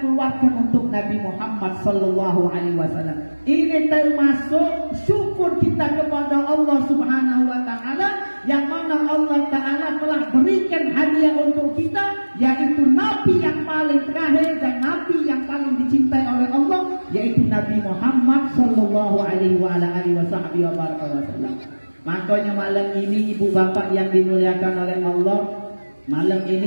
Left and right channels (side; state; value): both; inverted; correlation -1.00